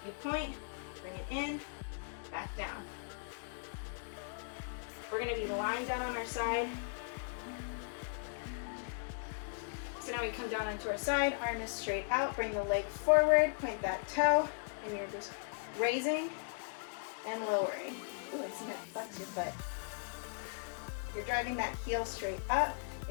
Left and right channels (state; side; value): silent; right; digital silence